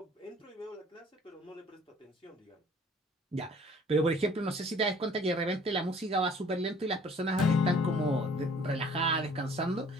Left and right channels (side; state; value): both; normal; correlation 0.54